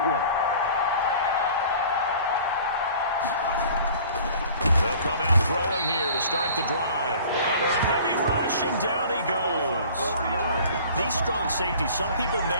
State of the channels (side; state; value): both; inverted; correlation -0.47